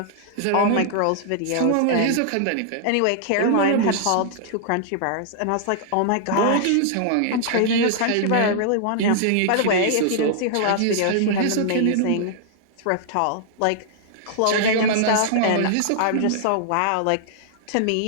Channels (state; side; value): different; both; correlation -0.01